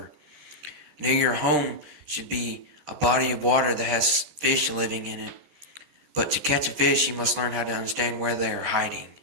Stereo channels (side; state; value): left; late; 13 ms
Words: Near your home should be a body of water that has fish living in it. But to catch a fish, you must learn how to understand where they are hiding.